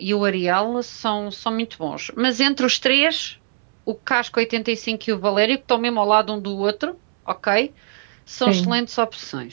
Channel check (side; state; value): left; silent; 65 dB below the other